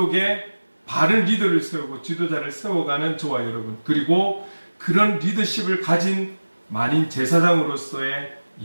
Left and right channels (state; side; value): inverted; both; correlation -1.00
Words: 바른 리더를 세우고 지도자를 세워가는 저와 여러분, 그리고 그런 리더십을 가진 만인 제사장으로서의